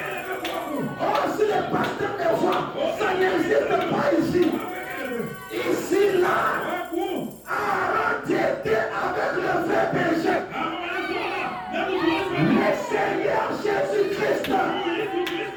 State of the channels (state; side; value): identical; both; correlation 1.00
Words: Oh, si le pasteur me voit, ça n'existe pas ici. Ici, là, Aaron était avec le vrai berger. Le Seigneur Jésus-Christ.